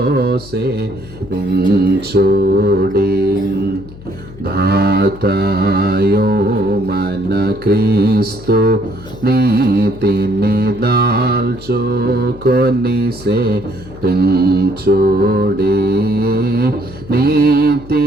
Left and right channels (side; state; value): left; noise; hum, 18 dB below the sound